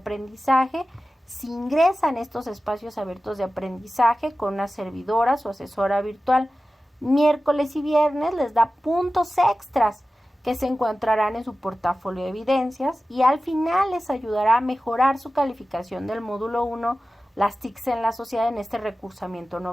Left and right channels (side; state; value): both; normal; correlation 0.95